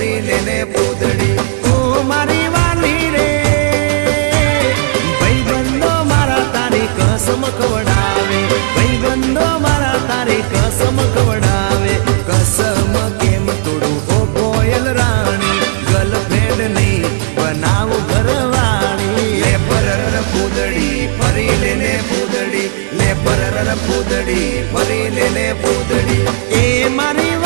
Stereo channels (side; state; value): left; silent; digital silence